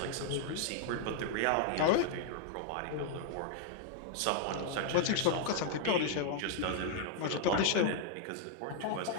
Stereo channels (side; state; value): both; different; correlation 0.00